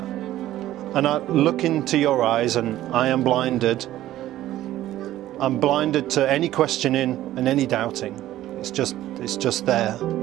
And I look into your eyes and I am blinded. I'm blinded to any questioning and any doubting. It's just there.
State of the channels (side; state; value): left; quieter; 14.1 dB